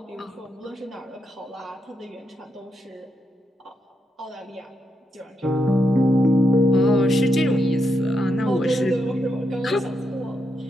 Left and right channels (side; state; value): both; normal; correlation 0.83